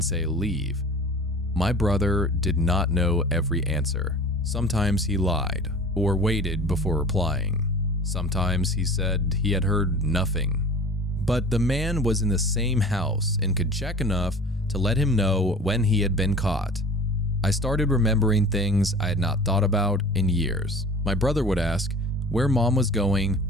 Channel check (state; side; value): normal; both; correlation 0.40